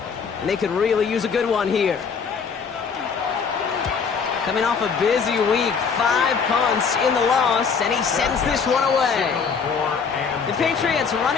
And they could really use a good one here. Coming off a busy week, 5 punts in the loss, and he sends this one away. The Patriots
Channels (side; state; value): right; quieter; 5.9 dB